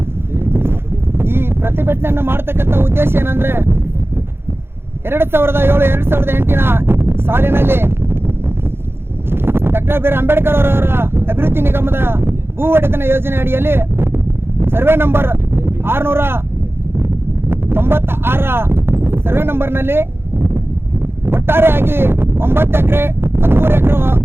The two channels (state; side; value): late; left; 0.11 ms